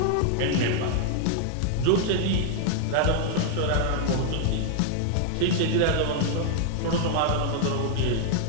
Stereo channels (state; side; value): different; both; correlation 0.00